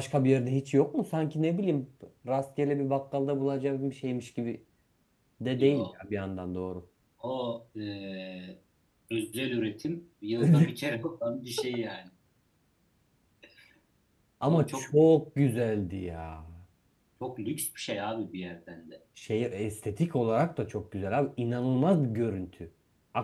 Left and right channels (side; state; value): both; identical; correlation 1.00